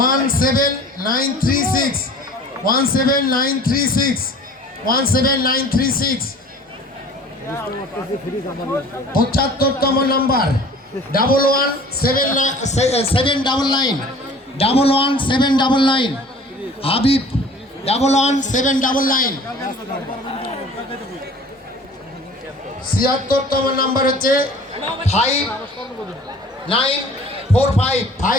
75তম নাম্বার 11799 হাবিব 11799। 76তম নাম্বার হচ্ছে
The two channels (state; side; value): normal; both; correlation 0.47